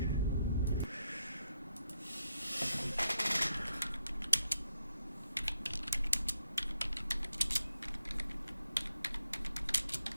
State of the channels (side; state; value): both; inverted; correlation -0.80